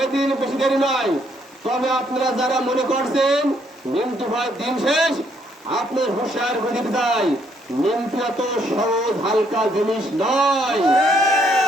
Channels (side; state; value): both; normal; correlation 0.70